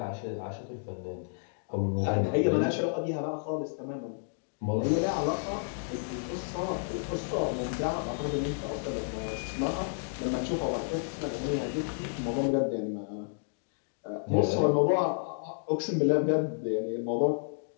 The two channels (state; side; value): silent; right; digital silence